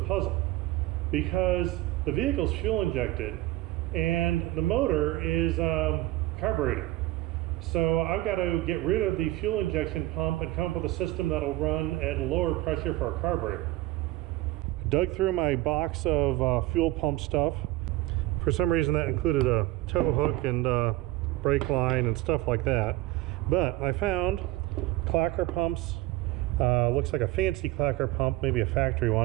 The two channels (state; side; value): quieter; left; 17.3 dB